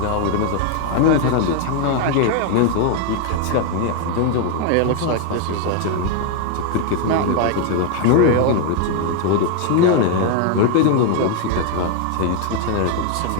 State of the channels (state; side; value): different; both; correlation 0.01